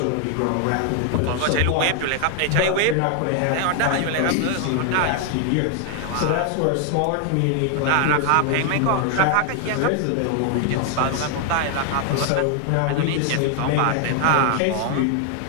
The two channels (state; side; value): different; both; correlation 0.00